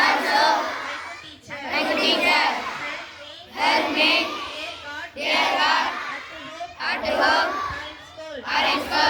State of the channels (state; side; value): identical; both; correlation 1.00